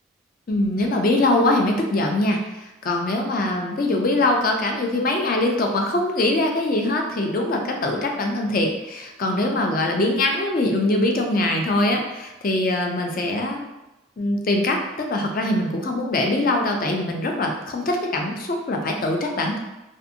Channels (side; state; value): both; normal; correlation 0.37